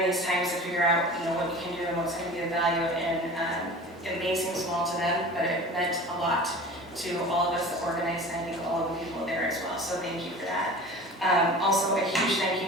these times to figure out, what you can do and what's going to be of value, and it may seem small to them, but it meant a lot to all of us that organized, and I think all of the people there as well, so thank you for that. Also, a huge thank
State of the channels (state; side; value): normal; both; correlation 0.38